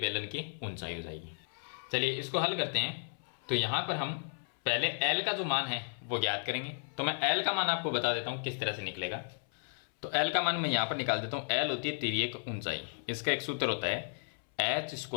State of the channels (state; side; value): silent; right; 55 dB below the other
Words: की ऊंचाई हो जाएगी। चलिए इसको हल करते हैं। तो यहाँ पर हम पहले L का जो मान है वो ज्ञात करेंगे। तो मैं L का मान आपको बता देता हूँ किस तरह से निकलेगा। तो L का मान मैं यहाँ पर निकाल देता हूँ। L होती है तिर्यक ऊंचाई, इसका एक सूत्र होता है h